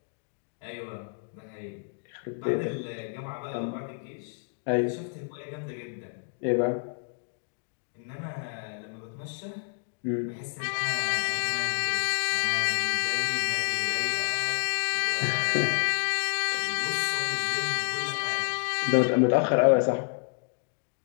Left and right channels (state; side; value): silent; right; digital silence